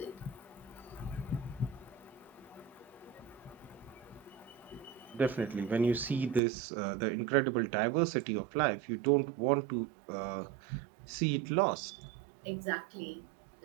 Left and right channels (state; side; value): drops out; left; at 6.4 s